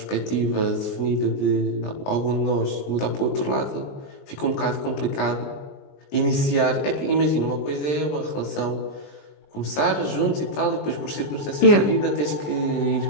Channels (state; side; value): late; right; 20 ms